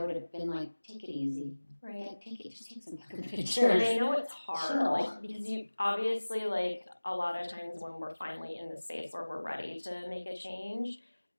have been like, take it easy. Right. Like, just take some fucking pictures. And I know it's hard, Chill. like, because you obviously, like, a lot of times when we're finally in the space where we're ready to make a change,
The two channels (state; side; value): inverted; both; correlation -1.00